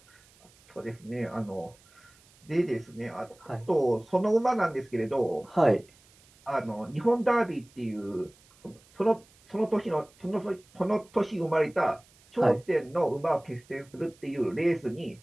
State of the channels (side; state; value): right; noise; hiss, 29 dB below the sound